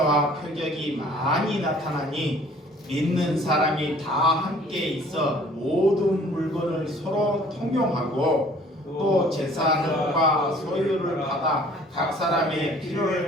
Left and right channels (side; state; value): both; normal; correlation 0.54